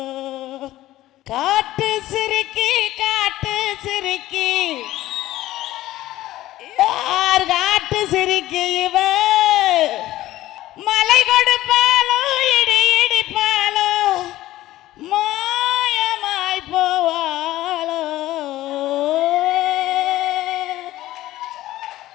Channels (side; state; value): right; quieter; 15.4 dB